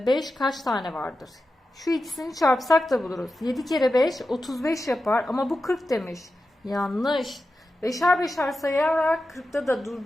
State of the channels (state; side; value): normal; both; correlation 0.91